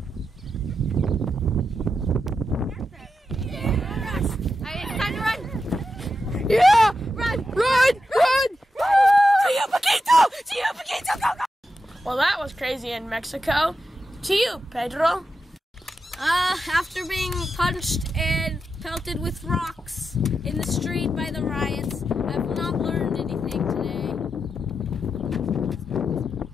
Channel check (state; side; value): normal; both; correlation 0.88